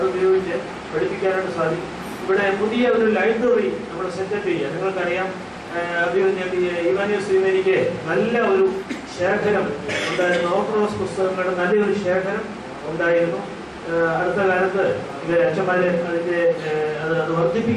ഉപയോഗിച്ച് പഠിപ്പിക്കാനായിട്ട് സാധിക്കും. ഇവിടെ പുതിയ ഒരു ലൈബ്രറി നമ്മൾ സെറ്റപ്പ് ചെയ്യുക. നിങ്ങൾക്കറിയാം, ഇവാനിയോസ് നല്ല ഒരു ശേഖരം ഉണ്ടായിരുന്നു, ഓർത്തഡോക്സ് പുസ്തകങ്ങളുടെ നല്ലൊരു ശേഖരം ഉണ്ടായിരുന്നു. അടുത്ത കാലത്ത് അച്ഛന്മാർ അത്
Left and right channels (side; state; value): both; identical; correlation 1.00